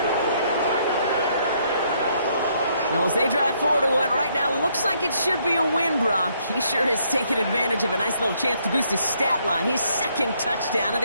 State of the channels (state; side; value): inverted; both; correlation -0.70